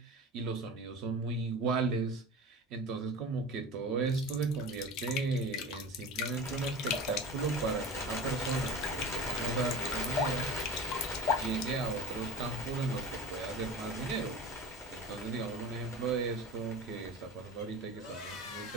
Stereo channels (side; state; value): both; normal; correlation 0.32